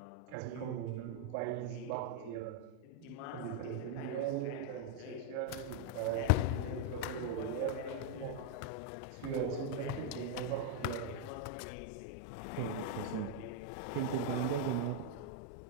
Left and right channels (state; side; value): different; both; correlation 0.00